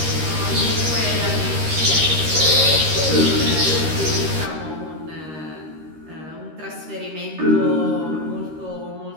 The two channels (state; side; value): late; left; 13 ms